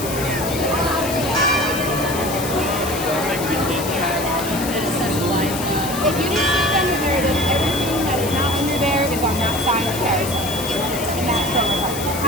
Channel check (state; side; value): noise; left; hiss, 8 dB below the sound